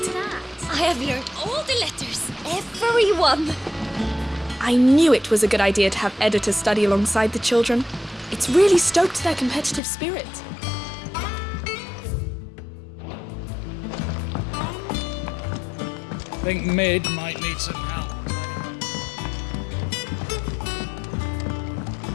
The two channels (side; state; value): right; drops out; at 9.8 s